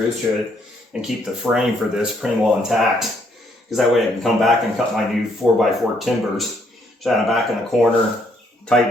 to it and keep the frame for this pretty well intact. Because that way I can come back and cut my new 4x4 timbers, shine it back in the corner,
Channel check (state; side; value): normal; both; correlation 0.70